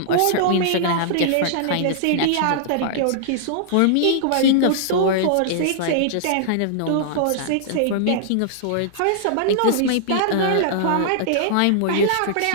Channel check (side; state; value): both; different; correlation -0.01